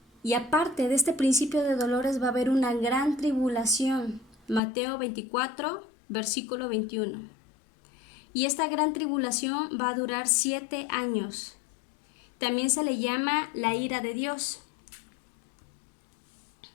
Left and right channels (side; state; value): right; drops out; at 4.6 s